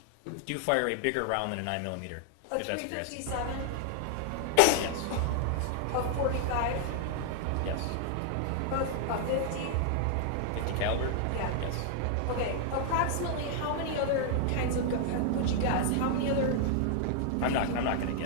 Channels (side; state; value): both; different; correlation 0.00